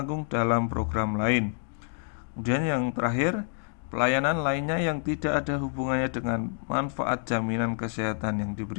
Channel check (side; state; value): right; silent; 59 dB below the other